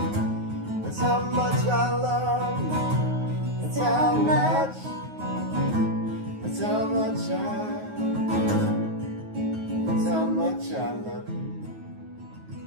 That's how much I love you. That's how much. That's how much That's how much I love you.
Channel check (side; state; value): left; late; 9.4 ms